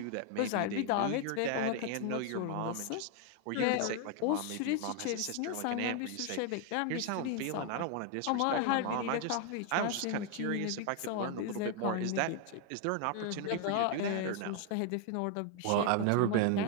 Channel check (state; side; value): different; both; correlation 0.01